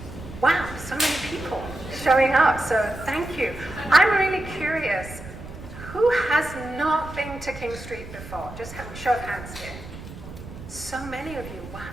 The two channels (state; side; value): noise; right; rumble, 13 dB below the sound